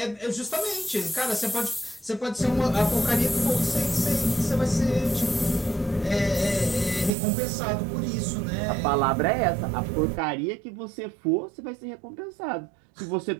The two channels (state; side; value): drops out; left; at 7.2 s